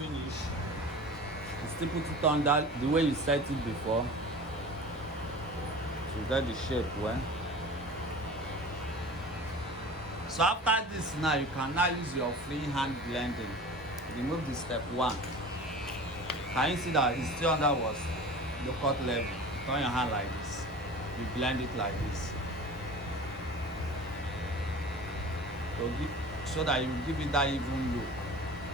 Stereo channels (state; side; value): normal; both; correlation 0.38